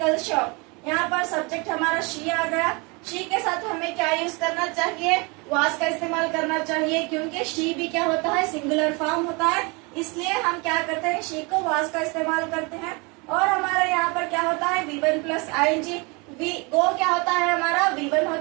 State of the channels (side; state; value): left; quieter; 29.0 dB